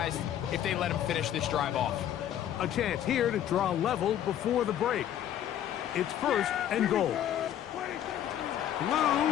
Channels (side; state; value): right; quieter; 10.9 dB